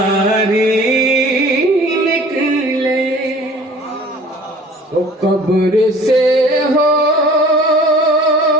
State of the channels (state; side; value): normal; both; correlation 0.48